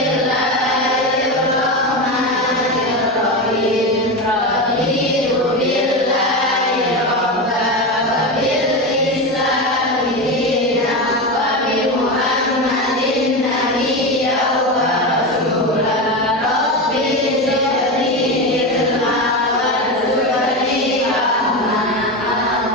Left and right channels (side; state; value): both; normal; correlation 0.18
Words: Raditu billahi rabban wa bil islami dinan wa bi Muhammadin nabiyyan wa rasulan. Rabbi zidni ilma warzuqni fahma.